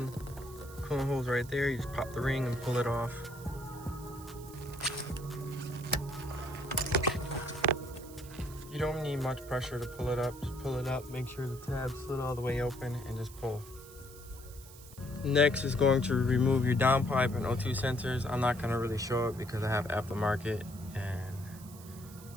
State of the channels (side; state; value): right; noise; hiss, 19 dB below the sound